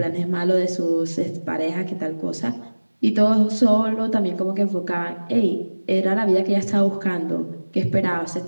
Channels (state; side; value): inverted; both; correlation -1.00